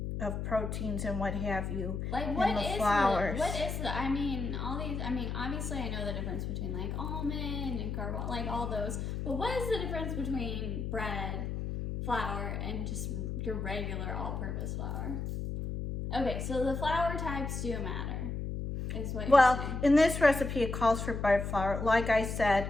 of proteins and what have you like in the flours. What is the, I mean, all these, I mean, obviously I know the difference between like almond and carbon, like all those, but what is the difference between bread, flour, and just your regular all-purpose flour? Okay, so the flour types do matter, is what you're saying. Well, in this recipe, it calls for bread flour. Like I said,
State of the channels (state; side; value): noise; left; hum, 3 dB below the sound